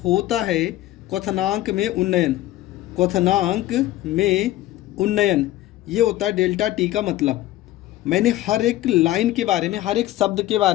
होता है क्वथनांक में उन्नयन। क्वथनांक में उन्नयन, ये होता है डेल्टा टी का मतलब। मैंने हर एक लाइन के बारे में, हर एक शब्द के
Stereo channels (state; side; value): quieter; right; 15.2 dB